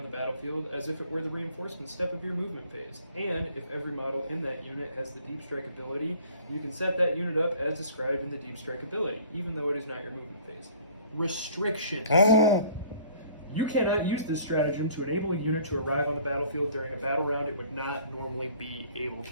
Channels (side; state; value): both; inverted; correlation -0.53